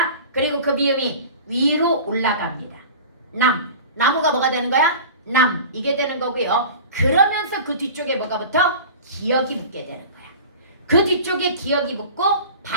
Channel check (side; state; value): both; inverted; correlation -0.37